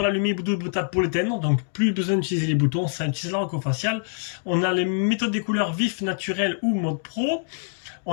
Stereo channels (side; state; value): right; silent; digital silence